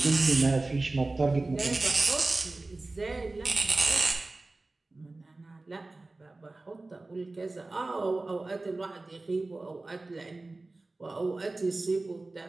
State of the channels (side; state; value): left; quieter; 3.2 dB